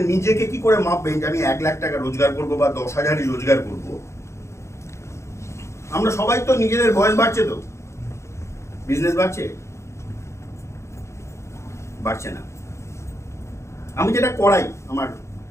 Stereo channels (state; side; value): late; right; 0.14 ms